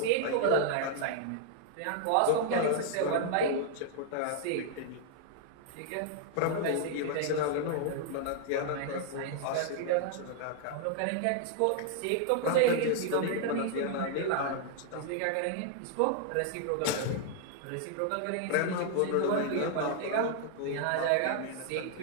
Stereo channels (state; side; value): different; both; correlation 0.00